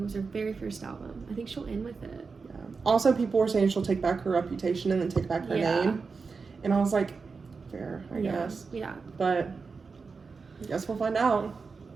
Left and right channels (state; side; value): quieter; left; 4.8 dB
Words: was her very first album. I think she'll end with it. Yeah. Also, people were saying she'll take back her reputation and then take back her name. And I was like, fair, I guess. Yeah. But I guess we'll find out.